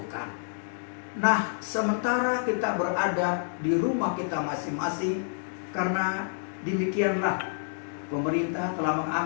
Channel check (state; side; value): silent; right; digital silence